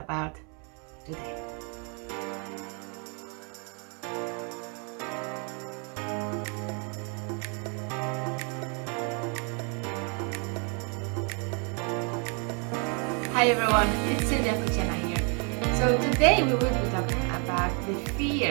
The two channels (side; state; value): left; quieter; 36.8 dB